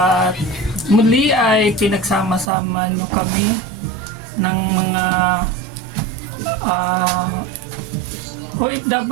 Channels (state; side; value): drops out; left; at 2.5 s